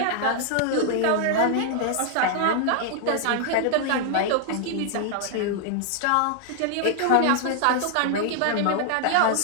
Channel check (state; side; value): different; both; correlation 0.00